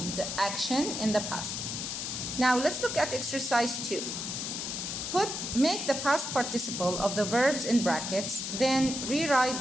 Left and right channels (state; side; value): noise; left; hiss, 4 dB below the sound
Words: action in the past. Now let's look at exercise 2. Make the past participle of the verbs in brackets, then rewrite